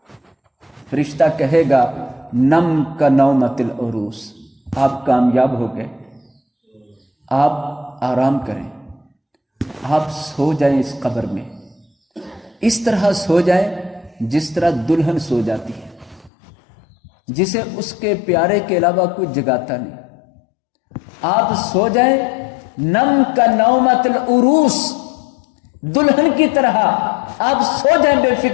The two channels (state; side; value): drops out; right; at 16.3 s